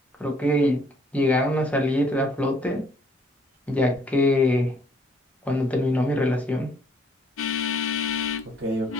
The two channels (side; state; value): both; normal; correlation 0.63